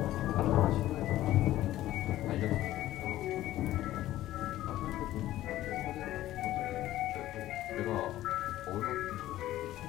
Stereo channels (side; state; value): right; quieter; 14.5 dB